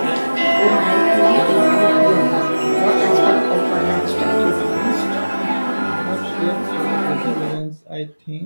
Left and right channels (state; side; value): inverted; both; correlation -1.00